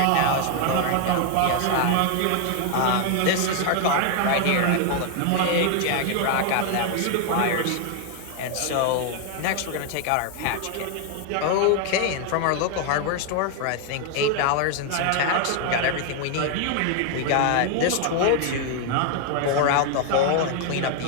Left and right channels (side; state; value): both; different; correlation 0.00